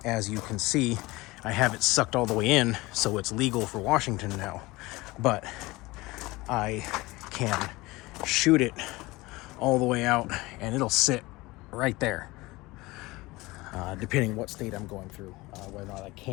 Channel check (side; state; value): right; quieter; 21.1 dB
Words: As you can see, I have it sucked all the way in, so it's legal for Washington now, but I can shoot it all the way out and it'll sit right there, depending what state I'm going through, whether or not I